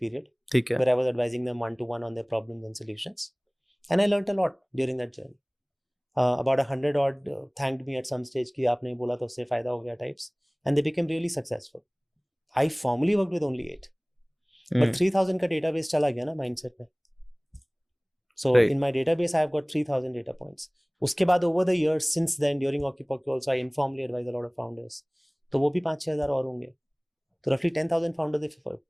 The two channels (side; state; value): both; identical; correlation 1.00